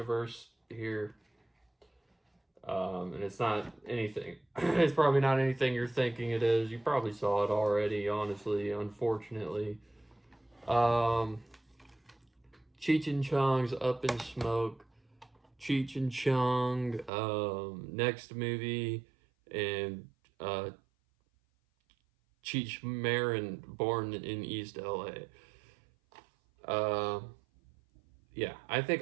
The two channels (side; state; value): left; drops out; at 17.1 s